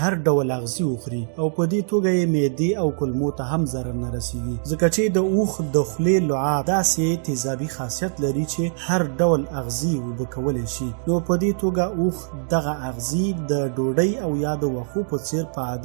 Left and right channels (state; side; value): silent; left; digital silence